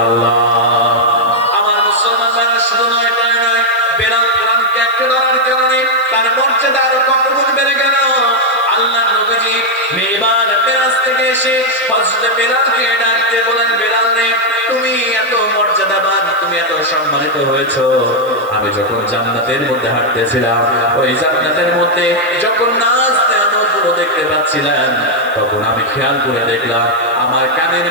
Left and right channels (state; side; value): noise; right; hiss, 24 dB below the sound